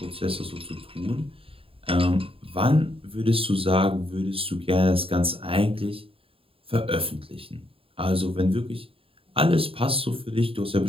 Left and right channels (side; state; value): left; late; 0.27 ms